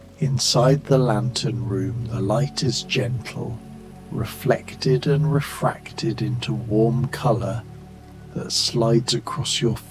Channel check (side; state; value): both; identical; correlation 1.00